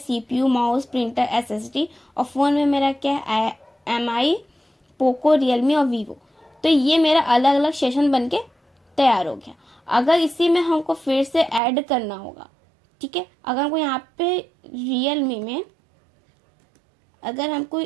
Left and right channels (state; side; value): drops out; left; at 11.6 s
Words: माउस, प्रिंटर, SSD, और फ़ोन में मेरा क्या है, MI, पोको, रियलमी और वीवो। तो ये मेरा अलग अलग सेशन बन के तैयार हो गया। अगर इसी में हमको फिर से ऐड करना होगा, ठीक है। अगर हमको यहाँ पे रियलमी में अगर हमको